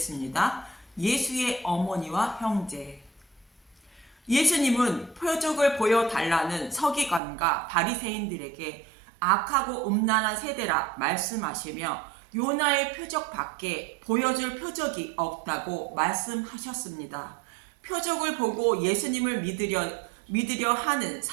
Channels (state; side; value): drops out; left; at 7.2 s